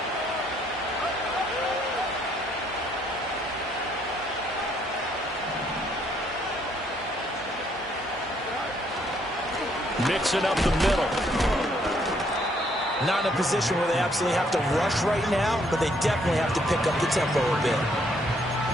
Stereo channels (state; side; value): normal; both; correlation 0.69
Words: Mixing up the middle. Not in a position where they absolutely have to rush right now, but they definitely have to pick up the tempo a bit.